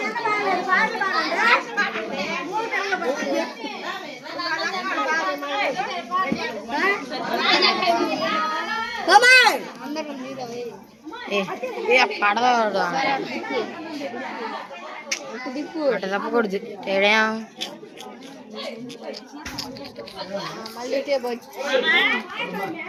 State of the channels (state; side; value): identical; both; correlation 1.00